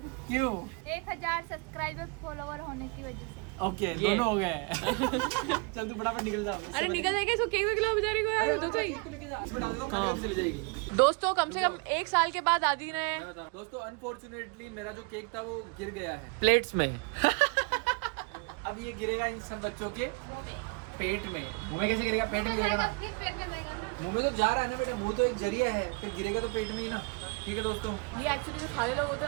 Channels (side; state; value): left; quieter; 31.3 dB